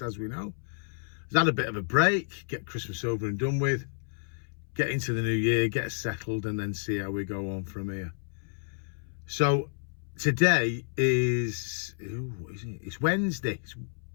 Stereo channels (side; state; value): right; silent; 58 dB below the other